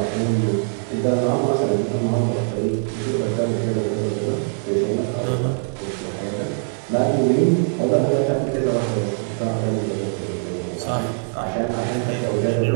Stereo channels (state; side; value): silent; left; 64 dB below the other